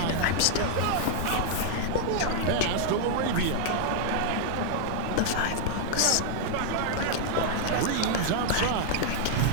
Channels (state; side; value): different; both; correlation -0.01